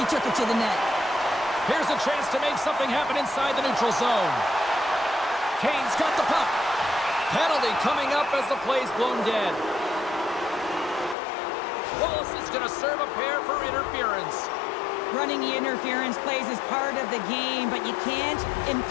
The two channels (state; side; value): drops out; right; at 11.2 s